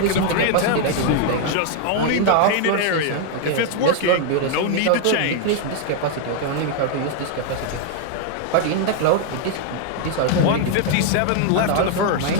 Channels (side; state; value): both; different; correlation 0.00